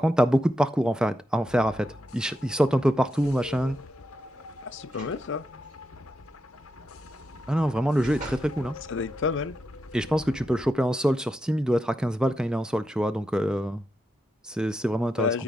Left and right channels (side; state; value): both; normal; correlation 0.86